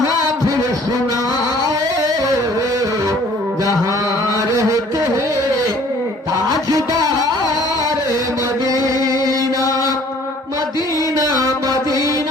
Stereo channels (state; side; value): normal; both; correlation 0.55